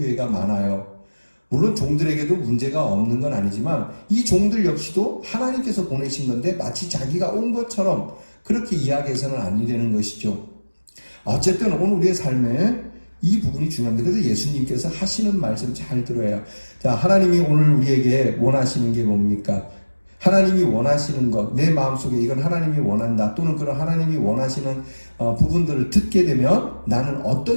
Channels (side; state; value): both; inverted; correlation -1.00